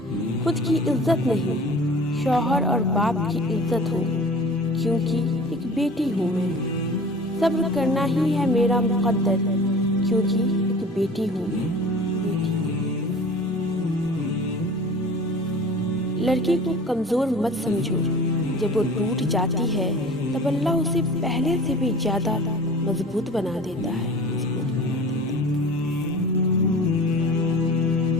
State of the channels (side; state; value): both; normal; correlation 0.42